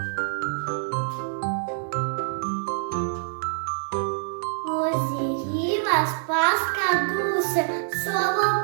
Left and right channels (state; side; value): silent; left; digital silence